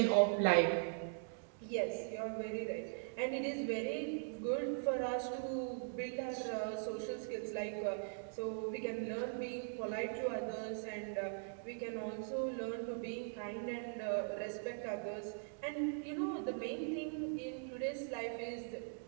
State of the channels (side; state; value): left; silent; digital silence